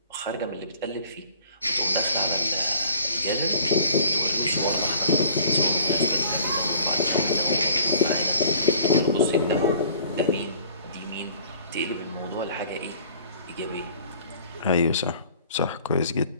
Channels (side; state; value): both; inverted; correlation -0.51